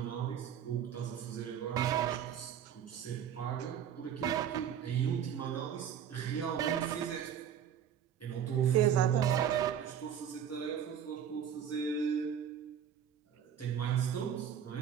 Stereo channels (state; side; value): quieter; left; 8.8 dB